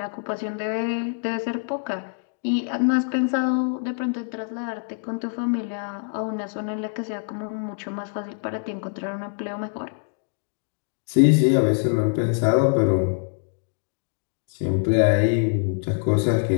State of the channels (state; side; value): silent; right; 57 dB below the other